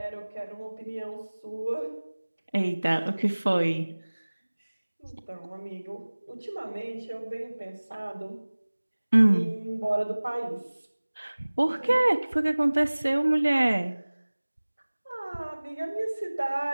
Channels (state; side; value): inverted; both; correlation -1.00